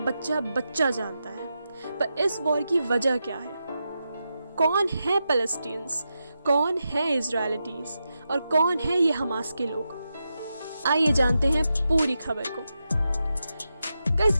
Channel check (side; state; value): both; inverted; correlation -0.88